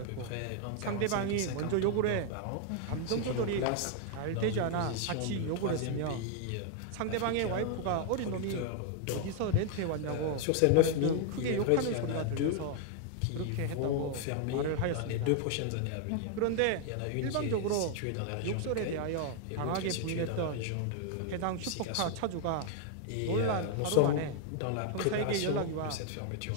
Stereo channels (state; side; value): different; both; correlation 0.00